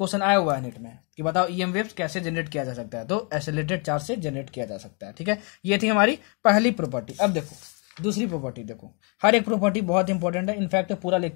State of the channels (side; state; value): right; quieter; 36.1 dB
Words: आया हुआ है नेट में कि बताओ ईएम वेव्स कैसे जनरेट किया जा सकता है, तो एसिलेटेड चार्ज से जनरेट किया जा सकता है, ठीक है। ये थी हमारी पहली प्रॉपर्टी। अब देखो दूसरी प्रॉपर्टी, देखो हर एक प्रॉपर्टी बहुत इंपॉर्टेंट है, इनफैक्ट पूरा